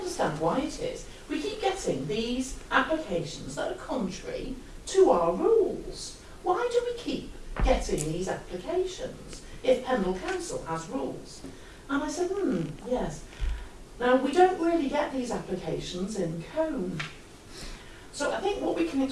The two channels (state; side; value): identical; both; correlation 1.00